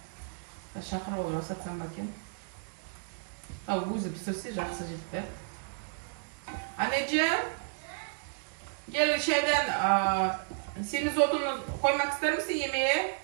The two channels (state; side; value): silent; left; digital silence